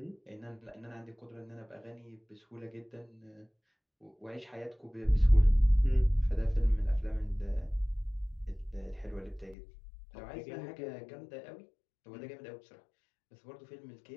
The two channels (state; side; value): drops out; right; at 9.6 s